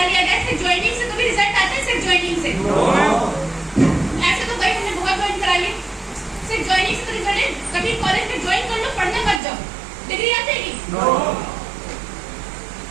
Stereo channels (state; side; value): drops out; left; at 9.4 s